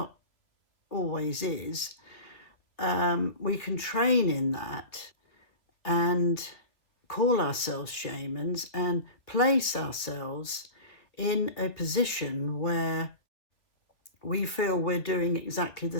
always is. We can train in that and call ourselves shamans and place ourselves in a position where we feel we're doing exactly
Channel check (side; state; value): right; late; 2.8 ms